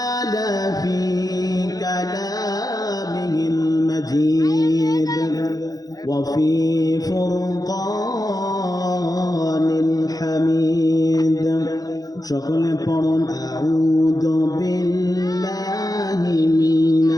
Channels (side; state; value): right; late; 0.18 ms